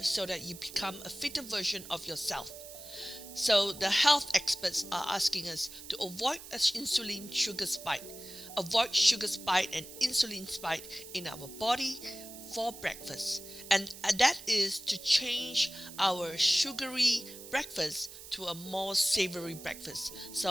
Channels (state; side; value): noise; right; hiss, 14 dB below the sound